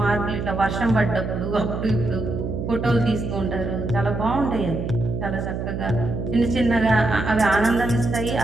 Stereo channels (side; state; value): right; noise; hum, 4 dB below the sound